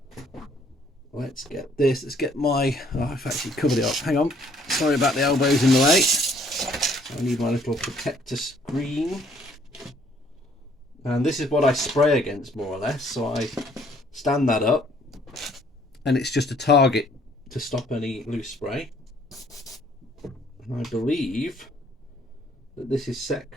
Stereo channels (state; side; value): normal; both; correlation 0.62